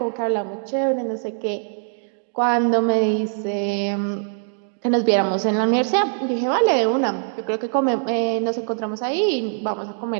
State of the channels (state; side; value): silent; left; 64 dB below the other